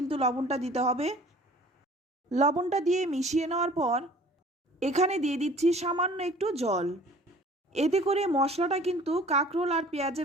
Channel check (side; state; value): both; normal; correlation 0.49